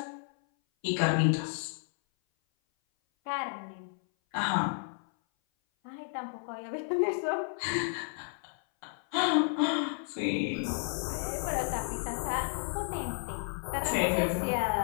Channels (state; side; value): silent; right; 56 dB below the other